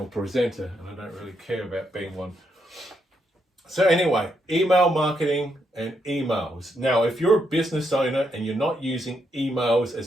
presenter and I don't really care about being one. So anyway, email marketing and emails. Now, if you're a business owner and you're not using emails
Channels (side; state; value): both; normal; correlation 0.79